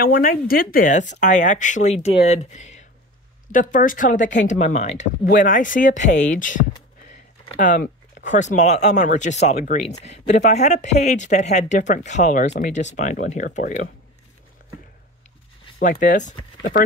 when I did this, I actually did the first color that came to my mind. When I see a page, of course, I'm on just solid greens. But if I had a page that had different colors, let me just find one here for you. Like this, the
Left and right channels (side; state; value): both; normal; correlation 0.32